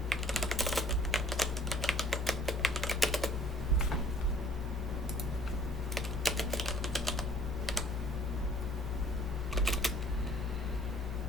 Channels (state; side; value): normal; both; correlation 0.58